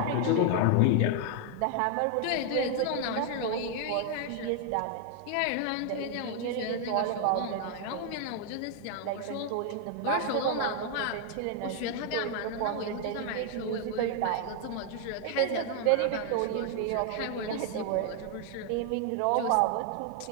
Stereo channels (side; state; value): both; different; correlation 0.00